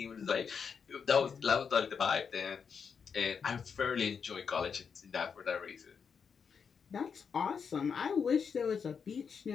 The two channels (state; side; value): quieter; right; 6.3 dB